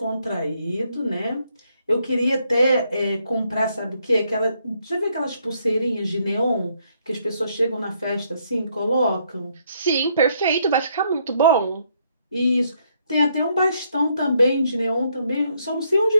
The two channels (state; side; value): inverted; both; correlation -0.72